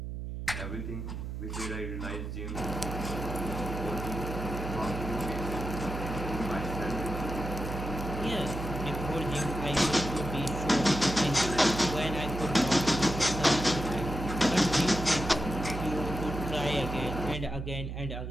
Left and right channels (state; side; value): noise; right; hum, 6 dB below the sound